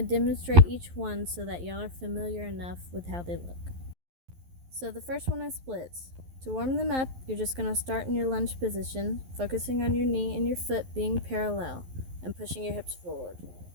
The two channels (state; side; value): late; left; 11 ms